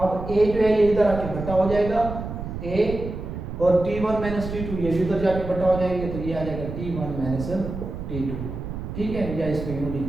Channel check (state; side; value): noise; right; rumble, 7 dB below the sound